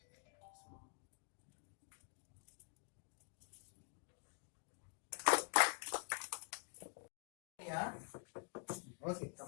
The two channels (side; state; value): right; quieter; 36.5 dB